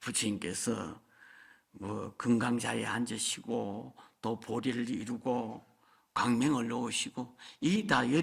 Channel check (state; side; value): identical; both; correlation 1.00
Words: 뭐 금강자에 앉으시고 또 보리를 이루고 광명을 놓으시고 이게 다